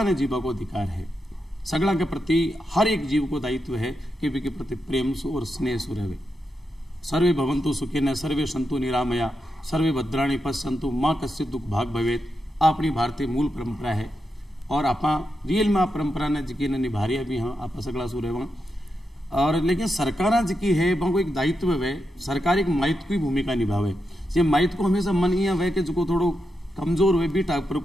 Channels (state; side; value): normal; both; correlation 0.86